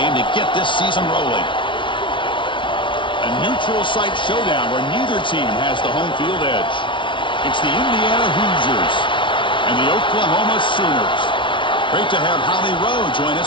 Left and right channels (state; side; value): late; right; 0.24 ms